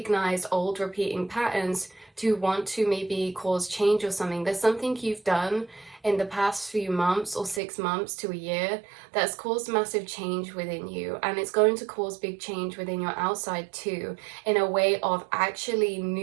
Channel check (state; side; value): drops out; left; at 7.6 s